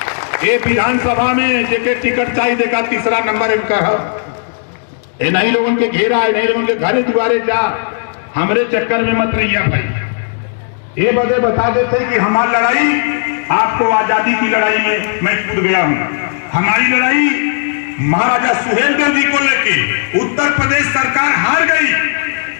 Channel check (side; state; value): right; silent; digital silence